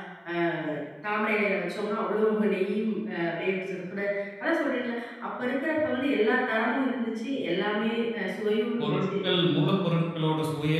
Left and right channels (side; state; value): both; identical; correlation 1.00